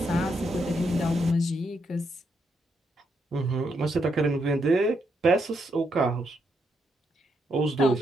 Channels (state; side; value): normal; both; correlation 0.79